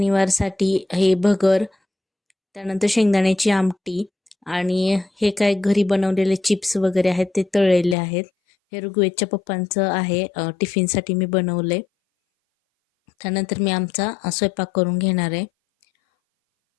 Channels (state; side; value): drops out; right; at 8.0 s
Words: हे भगर, त्यानंतर शेंगदाण्याची आमटी आणि हे काय घरी बनवलेले चिप्स वगैरे आहेत ते तळलेले आहेत. हे ऋग्वेदच्या पप्पांचं आहे, टिफिनसाठी मी बनवले. त्यानंतर मी आमचा स्वयंपाक करून घेणार आहे.